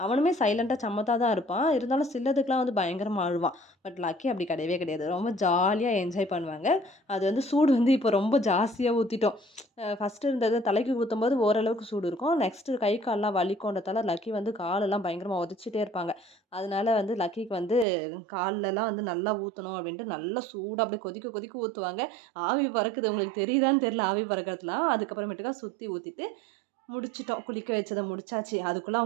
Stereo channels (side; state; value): left; drops out; at 17.9 s